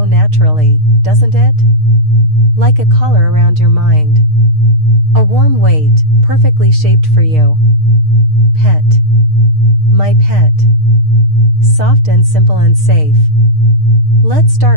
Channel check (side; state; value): left; late; 6.5 ms